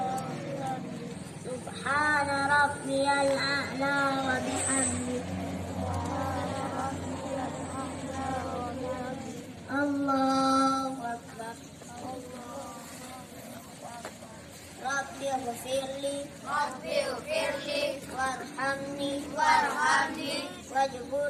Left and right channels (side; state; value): both; identical; correlation 1.00